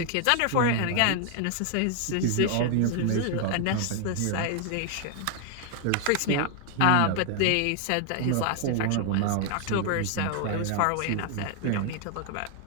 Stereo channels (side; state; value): both; different; correlation 0.00